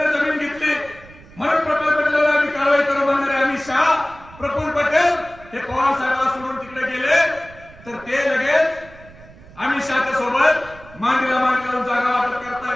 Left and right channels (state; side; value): noise; right; rumble, 21 dB below the sound